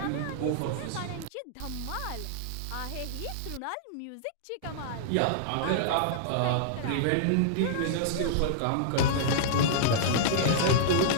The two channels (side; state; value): both; different; correlation -0.02